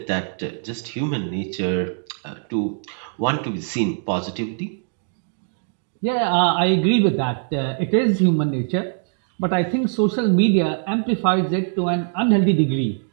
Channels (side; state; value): left; silent; digital silence